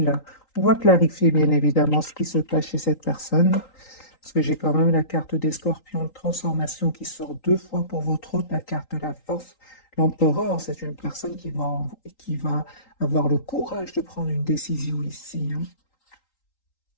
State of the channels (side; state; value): right; late; 3.8 ms